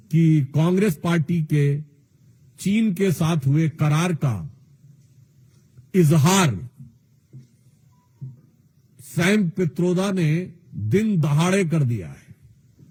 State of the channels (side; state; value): both; identical; correlation 1.00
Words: कि कांग्रेस पार्टी के चीन के साथ हुए करार का इजहार सैम पित्रोदा ने दिन दहाड़े कर दिया है।